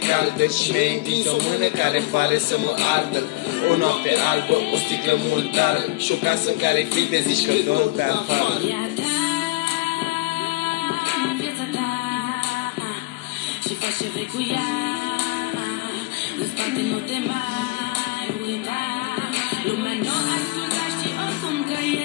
caldă și mi-ai întins o mână care pare să mă ardă. O noapte albă, o sticlă murdară și o casă în care fii te zici că dorm pe afară. Viața ta și faci ce vrei cu ea. În spate nu te mai uita. Lumea nu asculta și oricum că e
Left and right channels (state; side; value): quieter; right; 20.1 dB